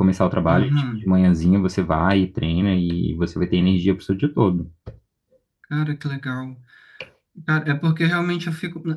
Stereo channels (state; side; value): identical; both; correlation 1.00